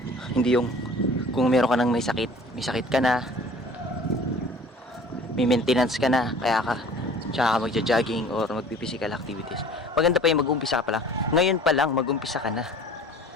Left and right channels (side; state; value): both; normal; correlation 0.47